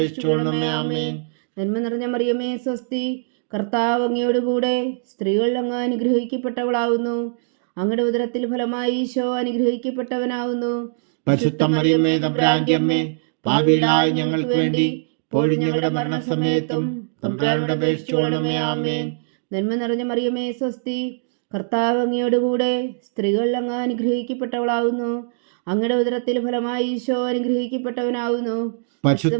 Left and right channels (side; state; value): left; silent; digital silence